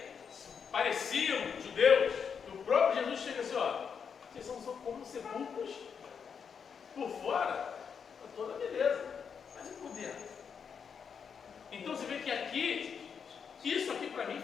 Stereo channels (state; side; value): quieter; right; 6.7 dB